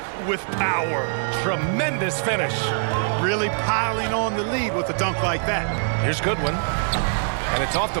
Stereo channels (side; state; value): left; silent; digital silence